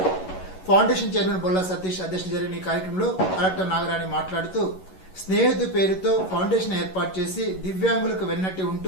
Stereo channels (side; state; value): right; late; 11 ms